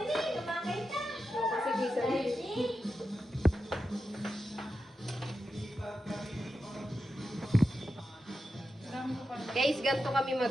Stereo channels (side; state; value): both; normal; correlation 0.90